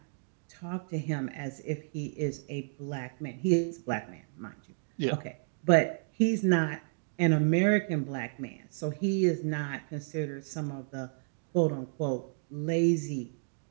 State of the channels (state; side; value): silent; left; digital silence